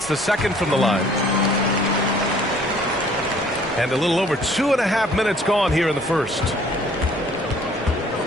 the second from the line. And a little over 2.5 minutes gone here in the first.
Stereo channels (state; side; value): normal; both; correlation 0.57